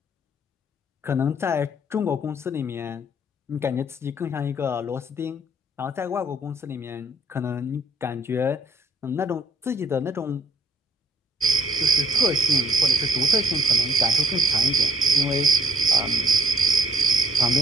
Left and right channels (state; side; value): normal; both; correlation 0.65